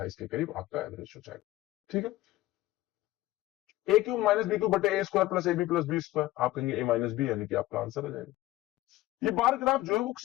के करीब आपका एवरेज हो जाएगा, ठीक है। A cube minus B cube बटे A square plus A B plus B square, आप कहेंगे ए माइनस बी, यानी कि आपका आंसर आ जाएगा। ये बार ग्राफ जो है वो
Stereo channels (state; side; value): quieter; right; 16.7 dB